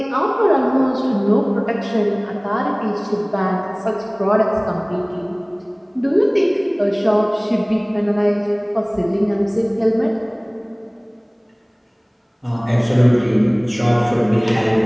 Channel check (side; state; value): both; identical; correlation 1.00